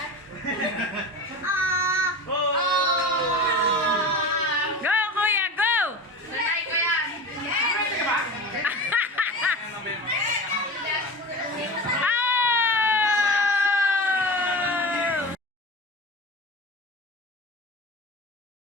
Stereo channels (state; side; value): normal; both; correlation 0.31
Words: Go, kuya, go! Sanay ko yan.